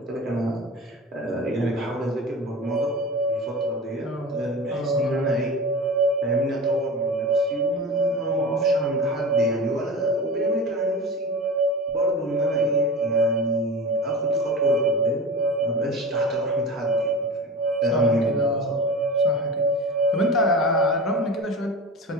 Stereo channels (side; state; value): both; normal; correlation 0.31